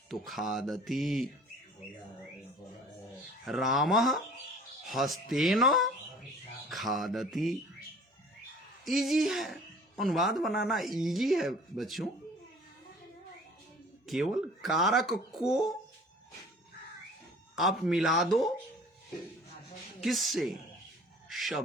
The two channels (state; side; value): normal; both; correlation 0.48